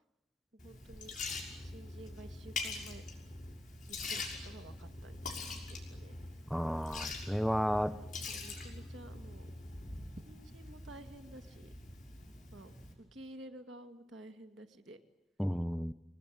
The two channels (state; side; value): normal; both; correlation 0.88